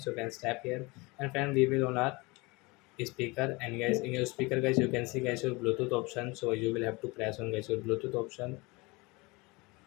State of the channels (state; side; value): quieter; right; 25.1 dB